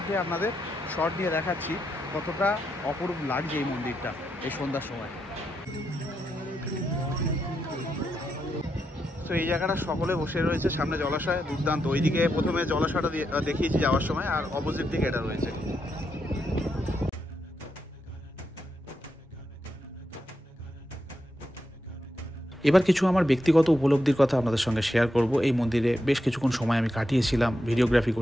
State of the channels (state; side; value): normal; both; correlation 0.84